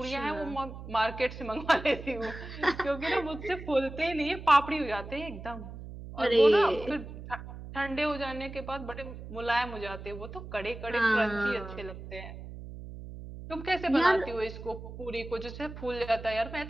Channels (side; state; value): right; noise; hum, 12 dB below the sound